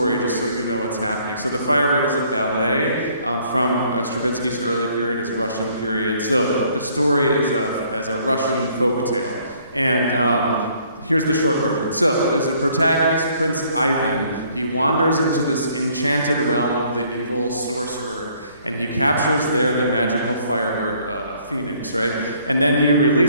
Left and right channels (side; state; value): both; inverted; correlation -0.62